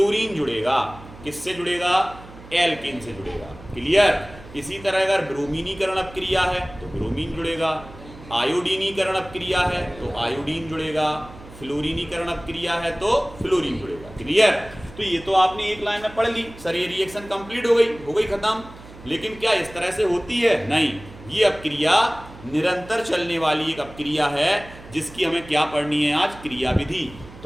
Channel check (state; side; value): noise; right; hum, 18 dB below the sound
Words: जुड़ेगा, किससे जुड़ेगा? एल्केन से जुड़ेगा। क्लियर? इसी तरह अगर ब्रोमीनीकरण अपक्रिया है तो ब्रोमीन जुड़ेगा, आयोडीनीकरण अपक्रिया है तो आयोडीन जुड़ेगा, फ्लोरीनीकरण अपक्रिया है तो फ्लोरीन जुड़ेगा। क्लियर? तो ये तो आपने एक लाइन में पढ़ ली सर, ये रिएक्शन कंप्लीट हो गई खत्म। लेकिन क्या इस तरह से होती है? नहीं, ये अपक्रिया निरंतर चलने वाली एक अपक्रिया है जिसकी हमें क्या पढ़नी है आज? क्रियाविधि।